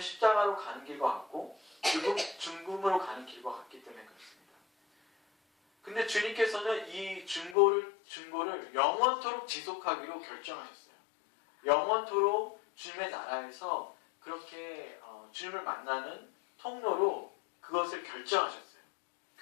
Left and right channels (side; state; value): right; drops out; at 7.6 s